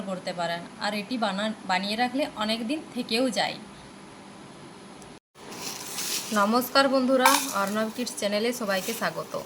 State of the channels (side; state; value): both; identical; correlation 1.00